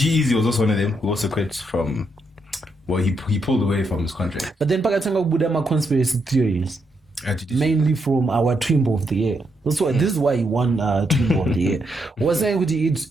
was also one of them who also quit from. Well, he pulled away from his contract. But then pakatanga kubuda ma conspiracy theories, mainly from our Twimbo of the Year. This is why he won Twimbo of the Year. Was saying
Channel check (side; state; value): both; normal; correlation 0.79